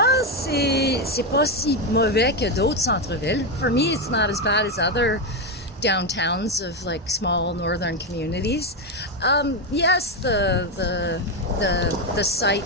c'est pas si mauvais que d'autres centres-villes. For me, it's not as bad as other downtowns of like small northern communities. Yes, the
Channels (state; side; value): normal; both; correlation 0.09